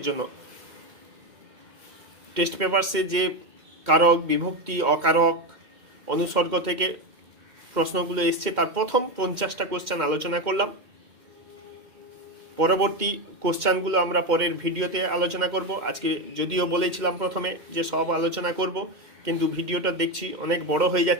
জন্য টেস্ট পেপারসে যে কারক, বিভক্তি, অকারক, অনুসর্গ থেকে প্রশ্নগুলো এসছে তার প্রথম 50টা কোশ্চেন আলোচনা করলাম। পরবর্তী কোশ্চেনগুলো আমরা পরের ভিডিওতে আলোচনা করব। আজকে যদিও বলেছিলাম প্রথমে যে সব আলোচনা করব, কিন্তু ভিডিওটা দেখছি অনেক বড় হয়ে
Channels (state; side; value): late; left; 2.1 ms